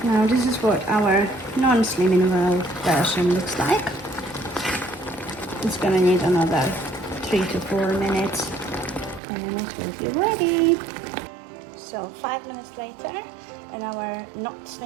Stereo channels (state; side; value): drops out; left; at 9.2 s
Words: Now this is what our non-slimming world version looks like. It's gonna need another 3 to 4 minutes and it will be ready. So 5 minutes later and our not